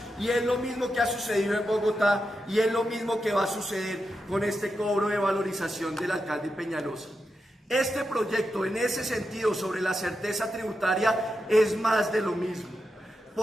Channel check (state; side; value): normal; both; correlation 0.87